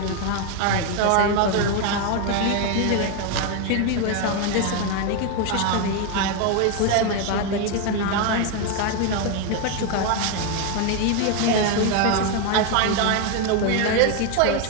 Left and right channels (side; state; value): both; different; correlation 0.01